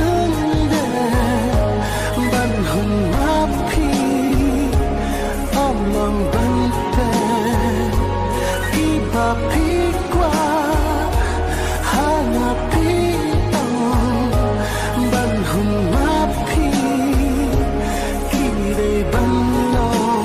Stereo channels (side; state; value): both; identical; correlation 1.00